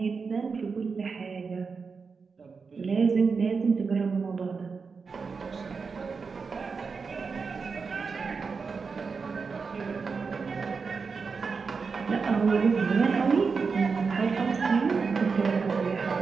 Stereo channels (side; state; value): left; quieter; 5.0 dB